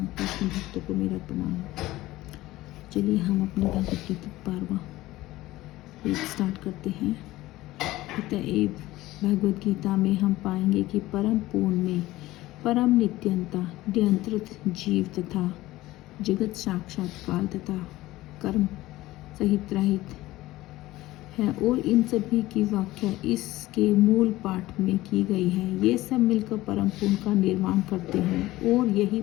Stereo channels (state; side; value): quieter; right; 17.3 dB